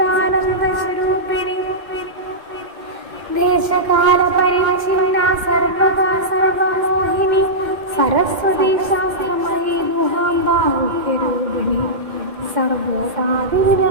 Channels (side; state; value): left; late; 2.1 ms